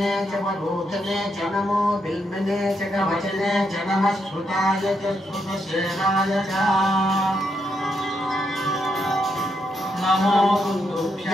च वरोधने च नमो बिल्मिने च कवचने च नमः श्रुताय च श्रुतसेनाय च नमो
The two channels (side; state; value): both; normal; correlation 0.80